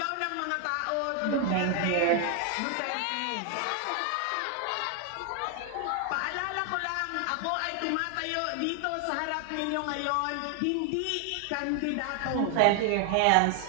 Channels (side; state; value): both; different; correlation 0.00